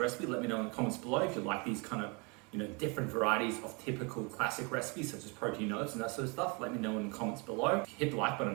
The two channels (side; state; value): left; quieter; 31.2 dB